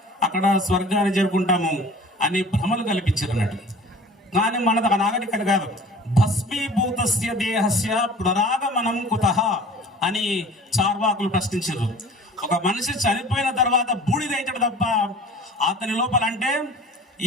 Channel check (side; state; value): both; normal; correlation 0.45